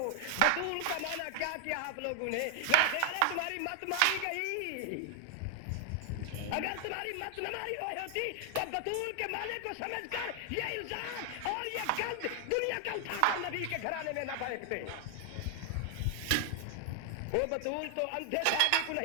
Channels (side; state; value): both; different; correlation 0.00